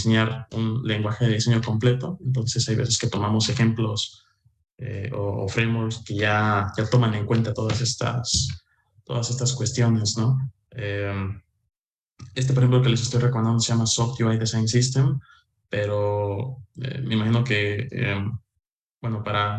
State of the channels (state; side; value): identical; both; correlation 1.00